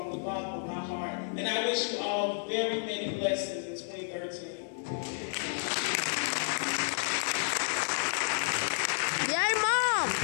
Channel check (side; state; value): right; silent; 57 dB below the other